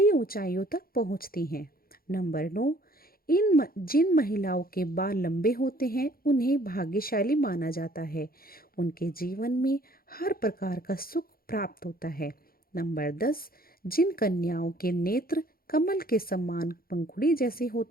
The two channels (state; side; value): late; right; 0.43 ms